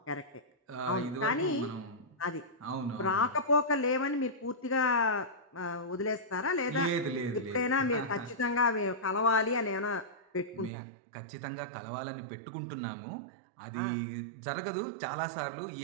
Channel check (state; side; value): drops out; left; at 10.7 s